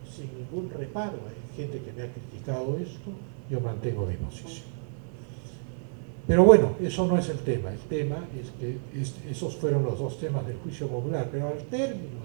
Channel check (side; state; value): left; silent; 58 dB below the other